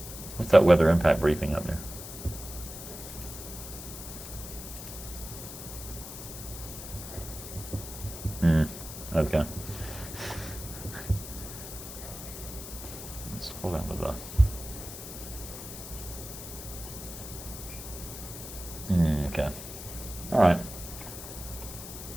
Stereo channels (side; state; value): left; noise; hiss, 10 dB below the sound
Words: What's that weather impact briefing up there? Okay. Let's hold on with that. Okay. All right.